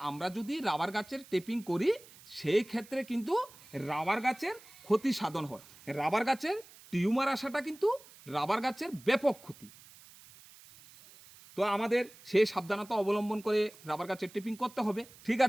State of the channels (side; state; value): right; noise; hiss, 22 dB below the sound